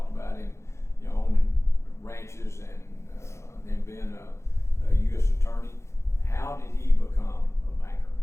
about him, you know, owning ranches and then being a U.S. attorney. How did he become a banker?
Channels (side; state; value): right; late; 0.13 ms